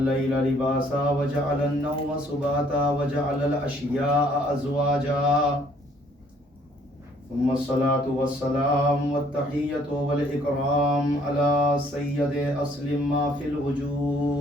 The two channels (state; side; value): normal; both; correlation 0.62